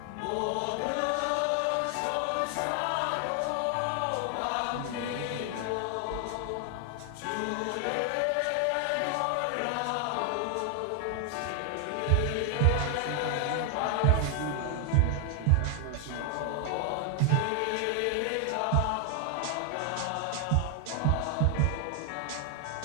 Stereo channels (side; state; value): both; different; correlation 0.00